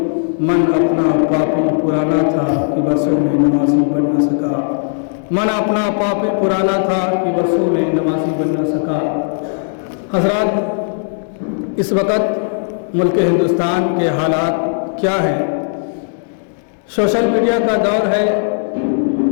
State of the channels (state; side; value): silent; right; digital silence